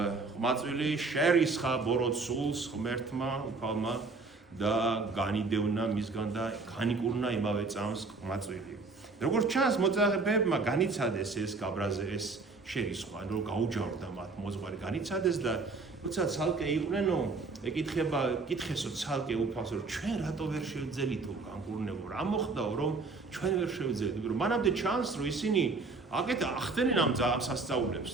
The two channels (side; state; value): left; quieter; 3.9 dB